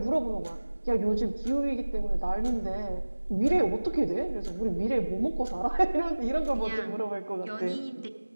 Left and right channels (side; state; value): both; inverted; correlation -1.00